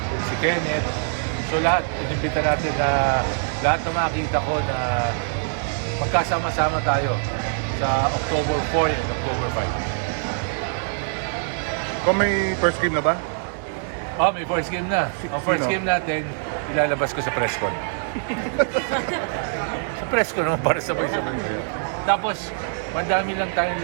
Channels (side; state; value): left; silent; digital silence